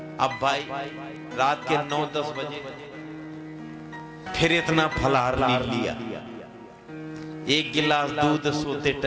अब भाई रात के 9-10 बजे फिर इतना फलाहार ले लिया। 1 गिलास दूध सोते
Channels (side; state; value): both; identical; correlation 1.00